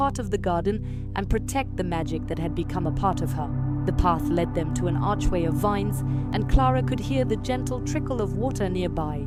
of the garden and protect the magic that had become a part of her. The path led them to an archway of vines, and Clara could hear the gentle trickle of water nearby.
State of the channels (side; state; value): both; identical; correlation 1.00